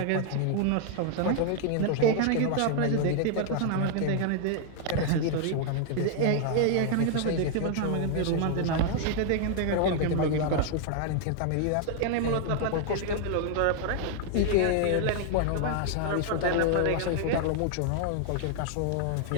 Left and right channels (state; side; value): different; both; correlation 0.00